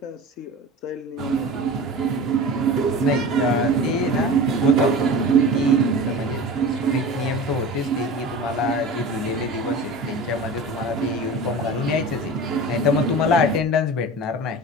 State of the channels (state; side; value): normal; both; correlation 0.33